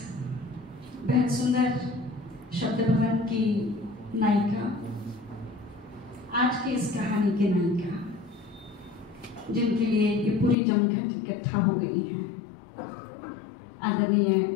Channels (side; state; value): right; drops out; at 10.6 s